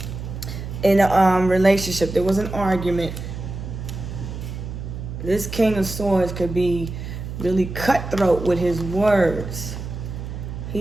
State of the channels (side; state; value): right; noise; hum, 8 dB below the sound